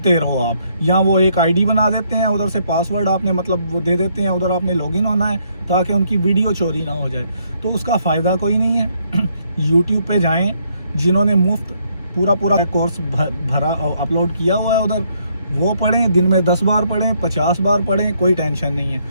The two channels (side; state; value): both; inverted; correlation -0.71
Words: रहो आप। या वो एक आईडी बना देते हैं, उधर से पासवर्ड आपने मतलब वो दे देते हैं, उधर आपने लॉगिन होना है ताकि उनकी वीडियो चोरी ना हो जाए। तो उसका फ़ायदा कोई नहीं है। यूट्यूब पे जाएं, जिन्होंने मुफ्त पूरा कोर्स भरा अपलोड किया हुआ है उधर, वो पढ़ें, दिन में 10 बार पढ़ें, 50 बार पढ़ें, कोई टेंशन नहीं